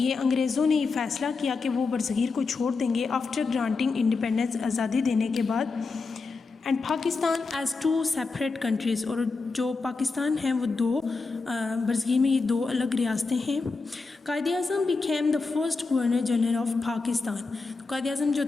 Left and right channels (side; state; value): right; quieter; 4.2 dB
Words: انگریزوں نے یہ فیصلہ کیا کہ وہ برصغیر کو چھوڑ دیں گے آفٹر گرانٹنگ انڈیپینڈنس آزادی دینے کے بعد. And Pakistan as two separate countries. اور جو پاکستان ہیں وہ دو برصغیر میں یہ دو الگ ریاستیں ہیں. Quaid Azam became the first governor general of Pakistan. Quaid Azam جو